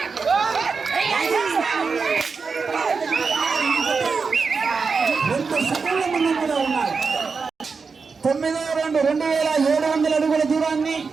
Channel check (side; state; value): left; quieter; 5.0 dB